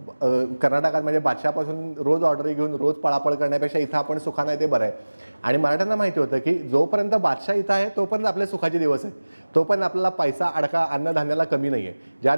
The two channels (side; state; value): both; inverted; correlation -1.00